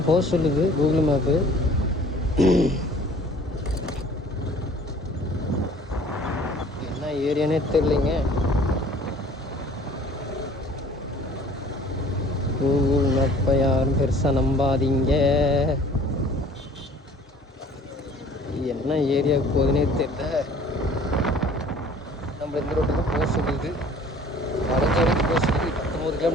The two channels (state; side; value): normal; both; correlation 0.51